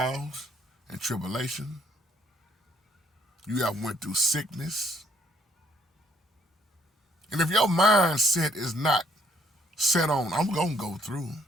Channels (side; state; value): both; normal; correlation 0.66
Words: and tribulation. You have went through sickness. And if your mindset is not set on, I'm going to go through,